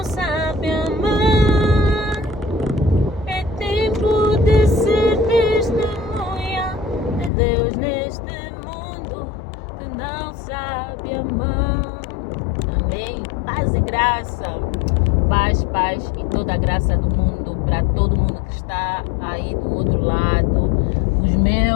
sabe amar. É tempo de ser testemunha de Deus neste mundo que não sabe amar. Amém. Paz e graça. Paz e toda a graça do mundo para todo mundo que está aí do outro lado. Os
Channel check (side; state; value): right; drops out; at 7.3 s